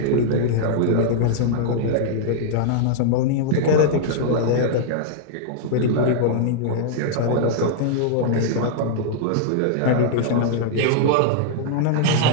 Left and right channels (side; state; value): both; different; correlation -0.01